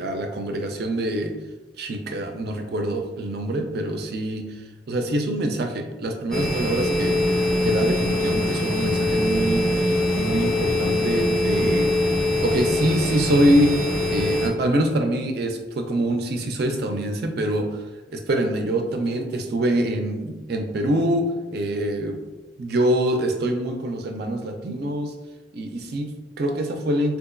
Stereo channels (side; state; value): both; normal; correlation 0.69